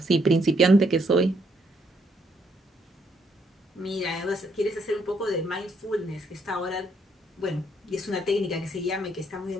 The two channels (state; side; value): normal; both; correlation 0.72